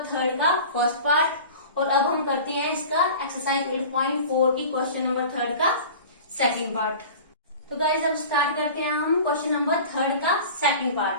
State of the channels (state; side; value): inverted; both; correlation -0.38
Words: 3 का फर्स्ट पार्ट, और अब हम करते हैं इसका एक्सरसाइज 8.4 की क्वेश्चन नंबर 3 का सेकंड पार्ट। तो गाइस अब स्टार्ट करते हैं हम क्वेश्चन नंबर 3 का सेकंड